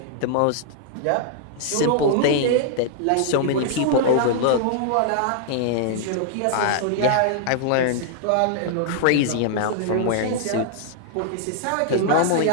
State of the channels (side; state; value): both; different; correlation -0.01